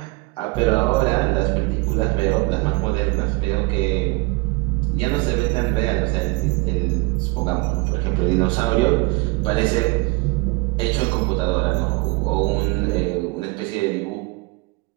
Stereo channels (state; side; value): quieter; left; 25.3 dB